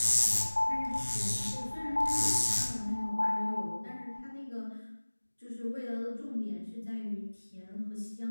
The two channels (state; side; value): inverted; both; correlation -1.00